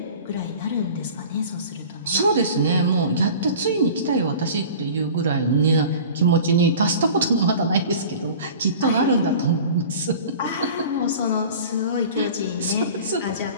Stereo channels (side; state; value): both; inverted; correlation -0.41